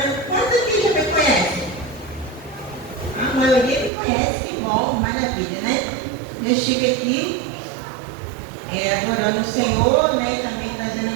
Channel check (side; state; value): left; drops out; at 3.9 s